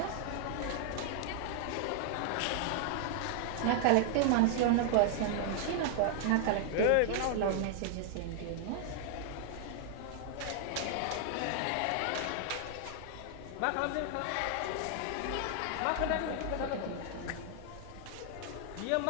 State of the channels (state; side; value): different; both; correlation 0.00